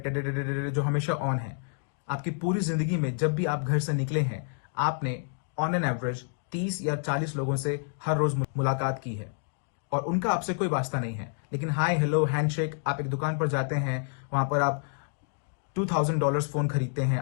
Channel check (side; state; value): right; silent; digital silence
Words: जो हमेशा ऑन है। आपकी पूरी जिंदगी में जब भी आप घर से निकले हैं, आपने ऑन एन एवरेज 30 या 40 लोगों से हर रोज मुलाकात की है और उनका आपसे कोई वास्ता नहीं है। लेकिन हाय हेलो हैंडशेक, आप एक दुकान पर जाते हैं, वहां पर आप $2000 फोन खरीदते हैं,